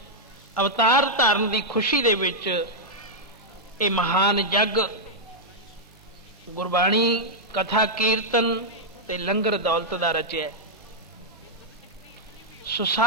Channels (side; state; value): both; normal; correlation -0.05